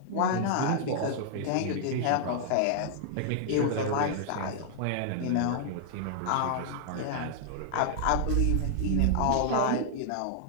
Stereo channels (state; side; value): different; both; correlation -0.01